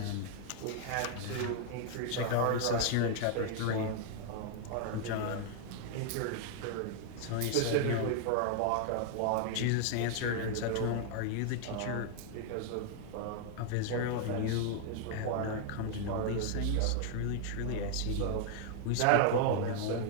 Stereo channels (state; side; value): different; both; correlation 0.00